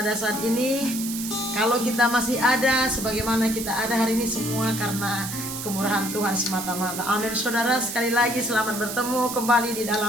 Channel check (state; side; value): noise; right; hiss, 7 dB below the sound